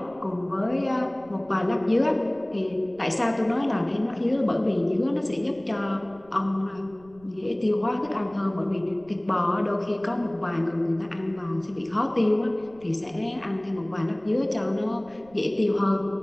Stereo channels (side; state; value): right; noise; rumble, 26 dB below the sound